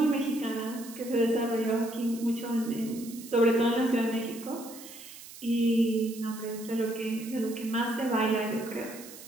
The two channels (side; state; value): right; noise; hiss, 16 dB below the sound